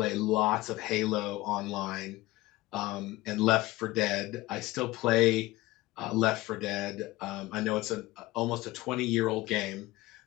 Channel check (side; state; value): right; quieter; 19.2 dB